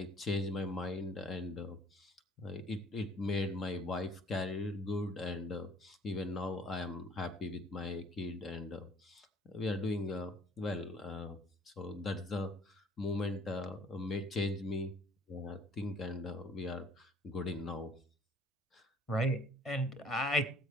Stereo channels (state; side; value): normal; both; correlation 0.56